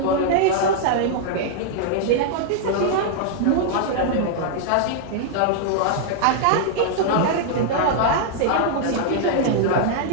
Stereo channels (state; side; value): different; both; correlation -0.01